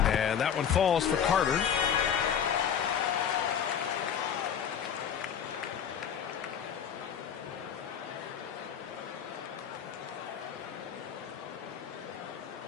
And that one falls for Carter.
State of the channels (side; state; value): right; quieter; 8.2 dB